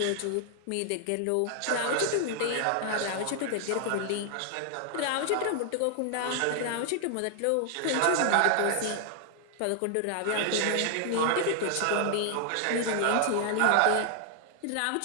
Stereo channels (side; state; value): both; different; correlation 0.00